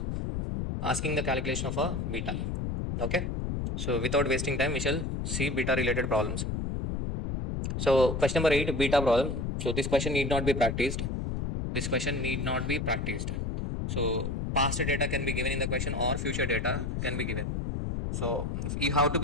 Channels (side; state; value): left; noise; rumble, 2 dB below the sound